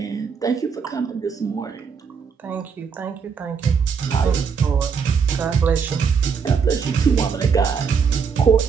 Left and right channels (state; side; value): quieter; left; 6.1 dB